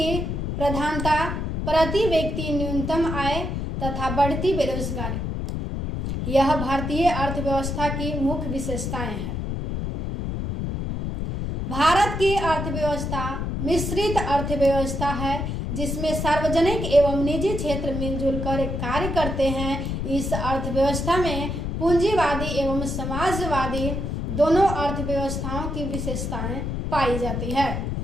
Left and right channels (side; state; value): left; noise; rumble, 3 dB below the sound